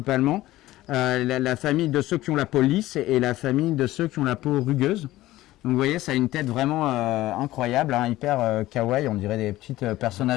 la famille de ceux qui ont la peau lisse et la famille de ceux qui ont la peau rugueuse. Donc vous voyez, ça a une tête vraiment incroyable, hein, hyper kawaii, on dirait des petits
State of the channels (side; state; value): right; quieter; 16.4 dB